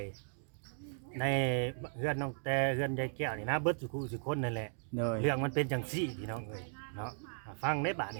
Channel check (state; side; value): silent; left; digital silence